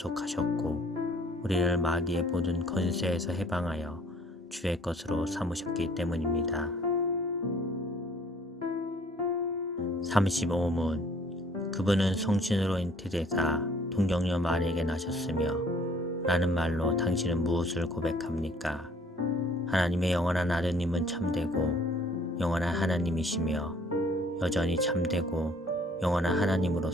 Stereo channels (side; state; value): both; normal; correlation 0.57